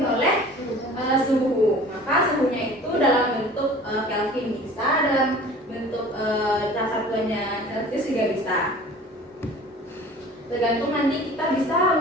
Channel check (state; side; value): normal; both; correlation 0.44